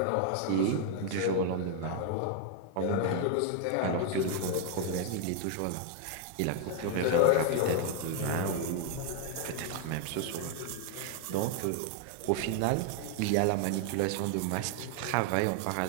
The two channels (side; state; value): both; different; correlation 0.00